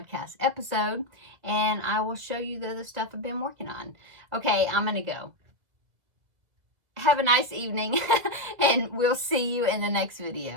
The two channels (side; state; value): left; late; 2.0 ms